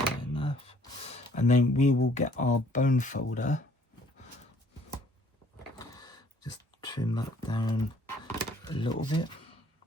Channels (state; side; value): normal; both; correlation 0.60